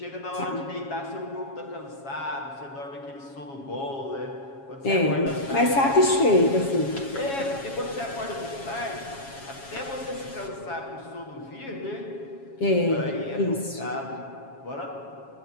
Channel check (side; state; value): right; late; 7.3 ms